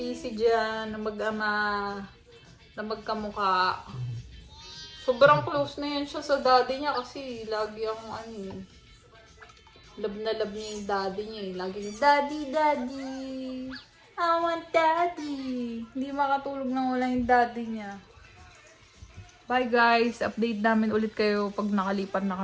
dyan na mag-ama, na magkamukha. Sobrang close na yan siya sa daddy niya kasi lagi ang love na love niya yung daddy niya eh. Lagi daddy, daddy. I want daddy. Hindi makatulog nang wala yung daddy niya. Bye guys. Update namin ulit kayo pag nakalipat na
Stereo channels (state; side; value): identical; both; correlation 1.00